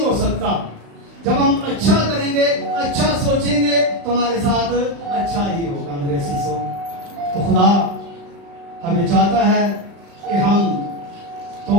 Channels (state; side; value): late; left; 35 ms